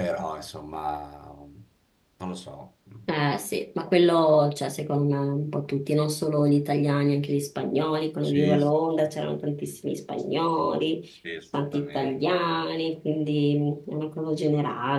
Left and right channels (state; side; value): identical; both; correlation 1.00